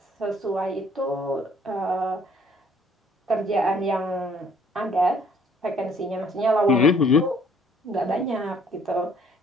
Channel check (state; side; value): normal; both; correlation 0.61